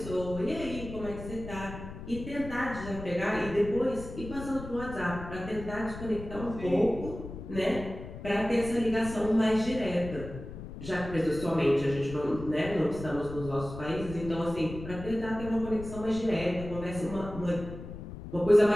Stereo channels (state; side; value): noise; left; rumble, 11 dB below the sound